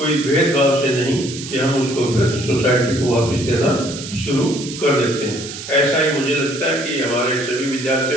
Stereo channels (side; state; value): right; noise; hiss, 11 dB below the sound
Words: भेदभाव से नहीं कि हम उसको फिर सोसाइटी को वापस देना शुरू कर देते हैं। ऐसा ही मुझे लगता है कि हमारे सभी